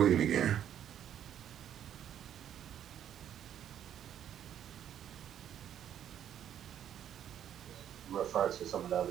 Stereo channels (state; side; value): quieter; left; 10.1 dB